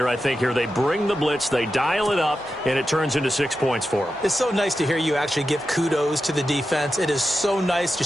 I think, here. They bring the blitz, they dial it up, and it turns into 6 points for them. It's so nice to hear you actually give kudos to the defense. It is so nice. You're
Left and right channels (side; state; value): both; normal; correlation 0.90